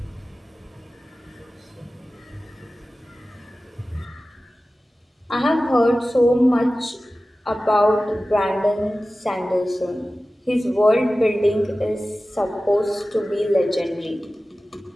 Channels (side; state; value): both; normal; correlation 0.96